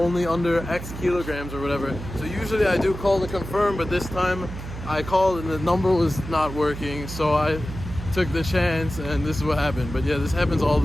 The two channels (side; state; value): right; noise; hum, 10 dB below the sound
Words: under X kilograms or whatever. So usually I do call to confirm, but this time I called and the number was not working, so I took the chance, and this is what happened. But yeah, this happens all